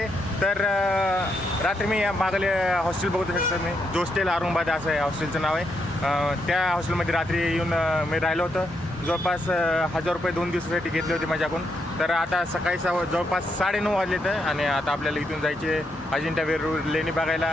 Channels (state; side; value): normal; both; correlation 0.79